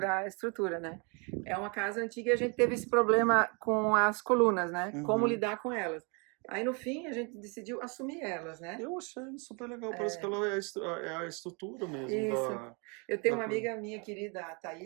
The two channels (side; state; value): left; quieter; 33.4 dB